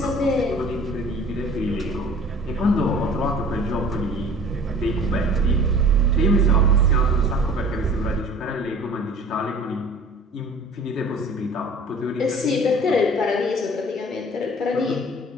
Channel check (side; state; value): both; normal; correlation 0.47